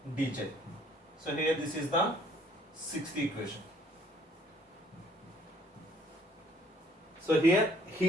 dz. So here this is the sixth equation. So here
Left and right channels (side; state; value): both; normal; correlation 0.61